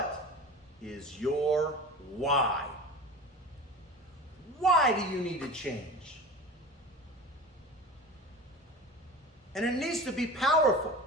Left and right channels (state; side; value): normal; both; correlation 0.34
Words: is your why? Why do you need to change? And it needs to be powerful.